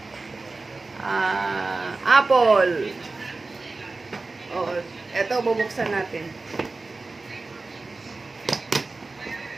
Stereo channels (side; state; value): left; quieter; 3.6 dB